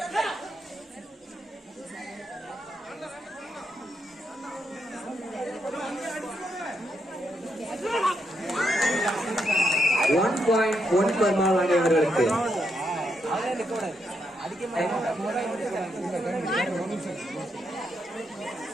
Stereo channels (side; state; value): both; normal; correlation 0.80